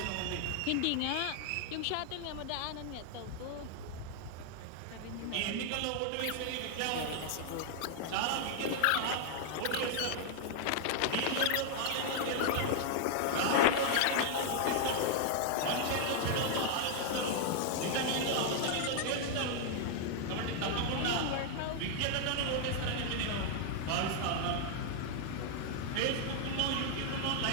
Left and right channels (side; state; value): both; different; correlation 0.00